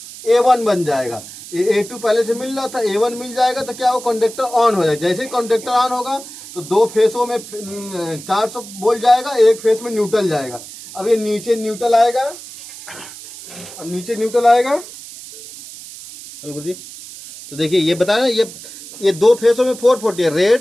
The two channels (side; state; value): right; noise; hiss, 15 dB below the sound